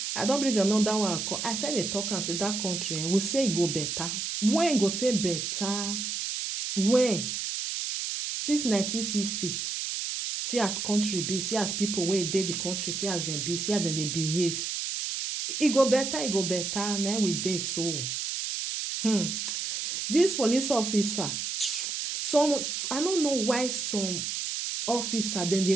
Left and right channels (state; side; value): noise; right; hiss, 3 dB below the sound